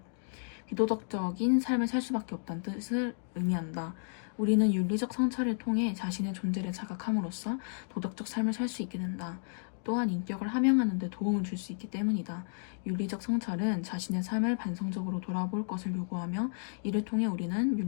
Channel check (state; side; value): silent; right; digital silence